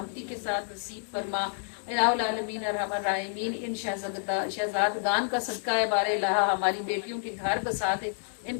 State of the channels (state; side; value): silent; right; 58 dB below the other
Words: کے ساتھ نصیب فرما، الہ العالمین ارحم الراحمین ان شہزادگان کا صدقہ ہے، بار الہ ہماری بیٹیوں کے گھر بسا دے، ان